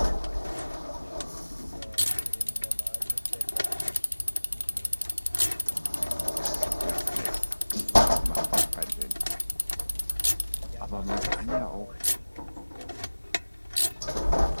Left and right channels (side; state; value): both; inverted; correlation -1.00